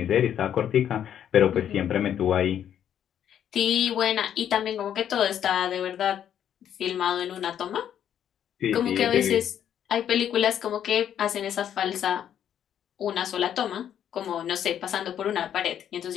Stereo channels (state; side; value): quieter; right; 9.7 dB